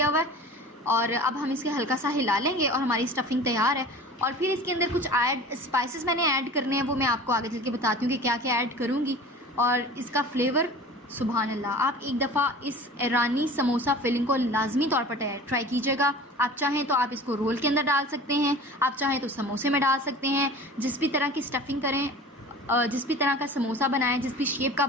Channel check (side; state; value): both; normal; correlation 0.40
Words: हुआ है। और अब हम इसके हल्का सा हिला लेंगे और हमारी स्टफिंग तैयार है। और फिर इसके अंदर कुछ स्पाइसेस मैंने ऐड करने हैं, वो मैं आपको आगे चल के बताती हूँ कि क्या क्या ऐड करूँगी। और इसका फ्लेवर सुभान अल्लाह, आप एक दफ़ा इस ईरानी समोसा फिलिंग को लाजमी तौर पर ट्राई कीजिएगा। आप चाहें तो आप इसको रोल के अंदर डाल सकते हैं, आप चाहें तो समोसे में डाल सकते हैं, जिस भी तरह की स्टफिंग करें जिस भी तरह का समोसा बनाएं, जिस भी शेप का